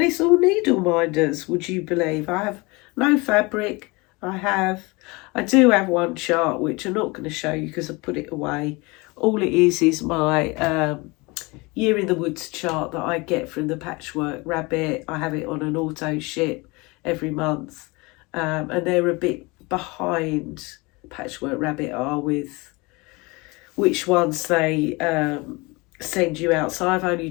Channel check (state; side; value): quieter; right; 25.4 dB